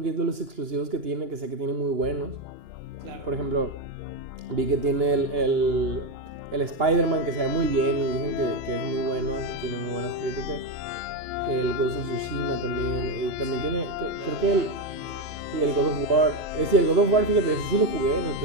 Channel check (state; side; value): late; left; 2.9 ms